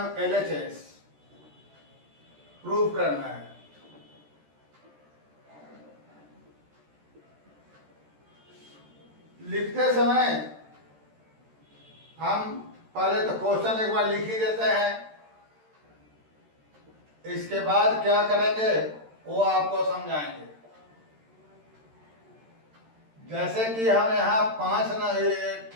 LHS प्रूव करना है। लिखते समय हम पहले तो क्वेश्चन एक बार लिख ही देते हैं, इसके बाद क्या करेंगे वो आपको समझाएंगे। जैसे कि हम यहाँ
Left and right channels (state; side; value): late; left; 13 ms